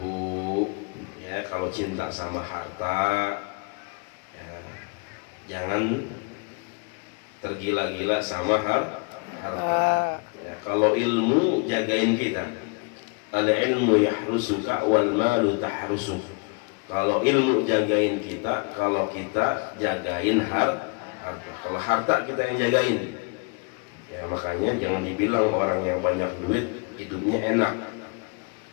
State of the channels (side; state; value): right; quieter; 32.4 dB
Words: Ya, kalau cinta sama harta, ya, jangan tergila-gila sama harta. Ya, kalau ilmu jagain kita, al ilmu yahrusuka wal malu tahrusuk. Kalau ilmu jagain kita, kalau kita jagain harta. harta. Kalau harta kita yang jagain, ya makanya jangan dibilang orang yang banyak duit hidupnya enak,